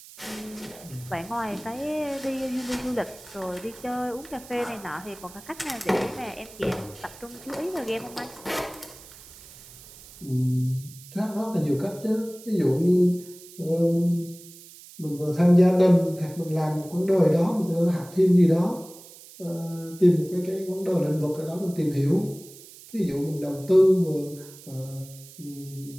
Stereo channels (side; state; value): right; noise; hiss, 19 dB below the sound